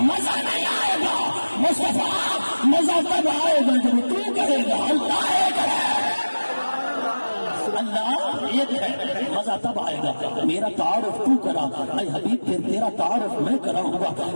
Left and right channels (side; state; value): both; inverted; correlation -1.00